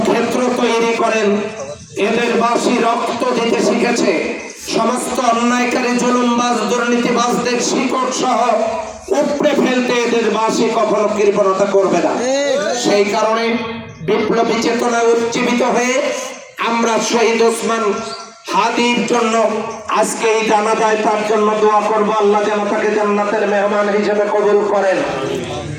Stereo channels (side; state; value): both; identical; correlation 1.00